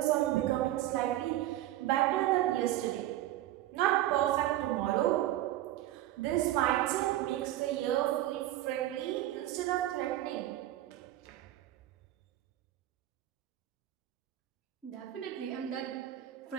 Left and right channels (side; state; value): left; quieter; 14.1 dB